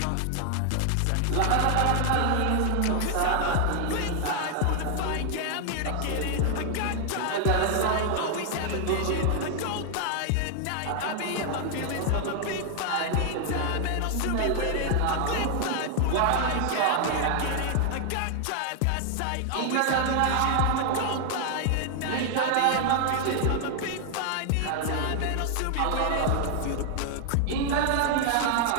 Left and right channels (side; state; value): both; different; correlation 0.00